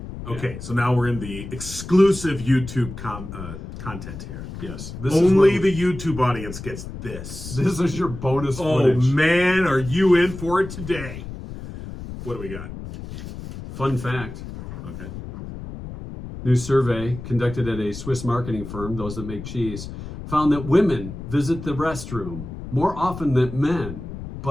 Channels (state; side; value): noise; left; rumble, 10 dB below the sound